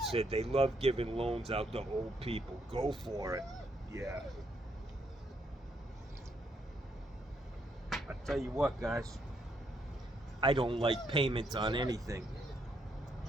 Said they love giving loans out to old people. Go for it. Yeah. I tell you what, guys. I don't like payments on anything.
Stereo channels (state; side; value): normal; both; correlation 0.75